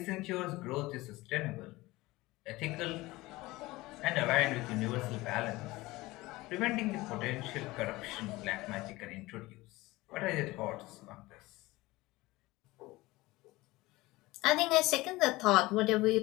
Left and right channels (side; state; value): right; quieter; 20.0 dB